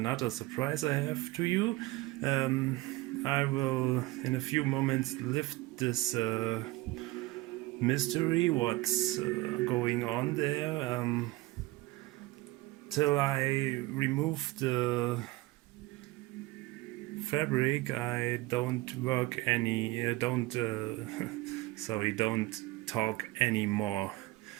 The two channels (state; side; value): quieter; left; 19.4 dB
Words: surprise I have to you. Um, I will, in a few moments, lift this mystery, what's going on there, till I remove the fabric. I don't work any don't sorry, don't talk anymore.